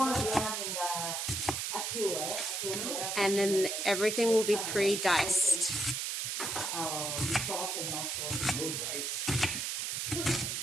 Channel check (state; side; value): noise; right; hiss, 2 dB below the sound